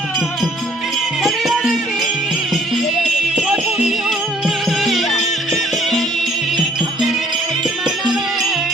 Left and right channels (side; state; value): both; normal; correlation 0.61